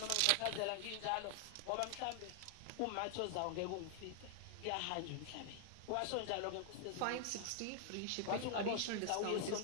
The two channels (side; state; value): both; different; correlation 0.00